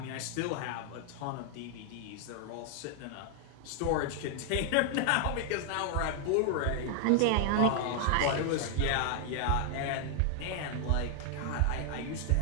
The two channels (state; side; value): different; both; correlation 0.00